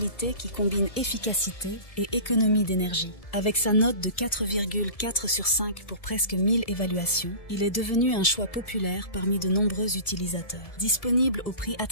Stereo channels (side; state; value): right; late; 1.7 ms